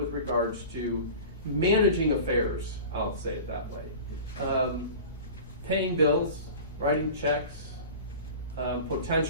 regards to managing affairs, I'll say it that way. Paying bills, writing checks,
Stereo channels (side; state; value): both; inverted; correlation -0.37